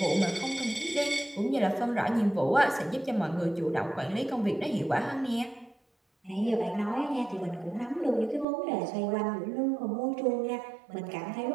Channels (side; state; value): left; drops out; at 8.5 s